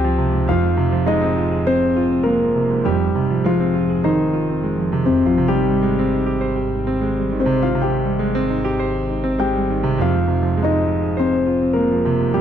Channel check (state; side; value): normal; both; correlation 0.78